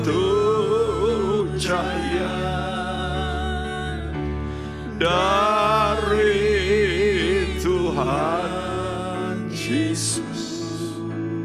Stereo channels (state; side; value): identical; both; correlation 1.00